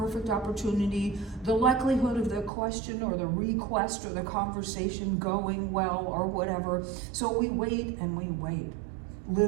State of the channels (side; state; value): left; drops out; at 2.5 s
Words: opportunity, the likelihood of the question or the request or the conversation going well or whatever. So we wait and we wait.